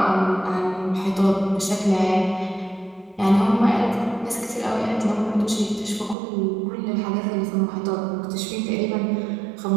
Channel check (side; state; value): left; drops out; at 6.2 s